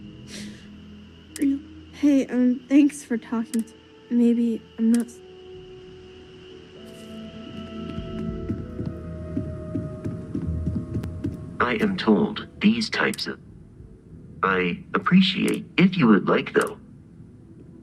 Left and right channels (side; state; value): both; identical; correlation 1.00